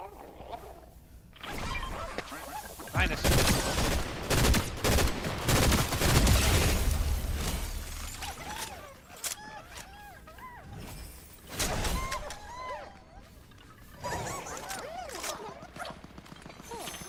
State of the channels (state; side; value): identical; both; correlation 1.00